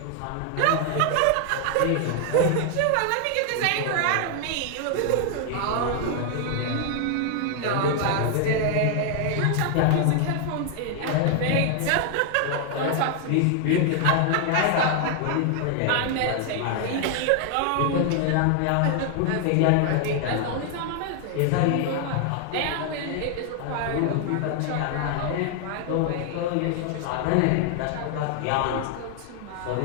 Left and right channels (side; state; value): both; different; correlation 0.00